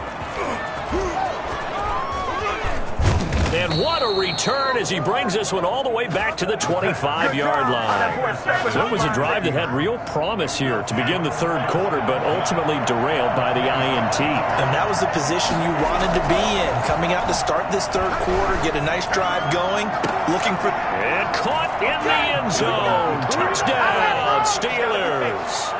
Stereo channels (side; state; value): both; identical; correlation 1.00